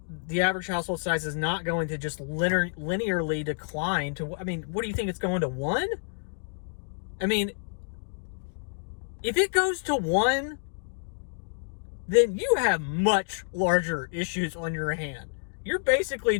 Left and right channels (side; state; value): right; silent; digital silence